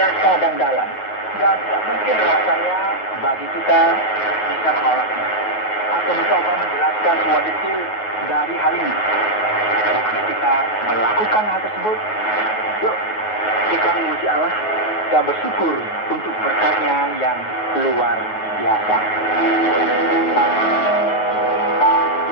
dan dalam. Dan tidak mungkin rasanya bagi kita bisa menolaknya atau mencoba menjelaskan semua detail dari hal ini. Bukan kita melakukan hal tersebut, yuk kita memuji Allah dan bersyukur untuk berkat-Nya yang luar biasa.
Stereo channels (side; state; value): right; late; 9.4 ms